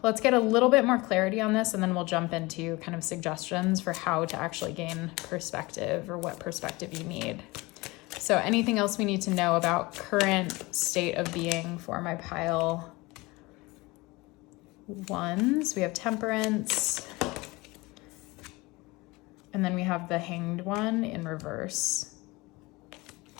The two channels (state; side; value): quieter; right; 22.9 dB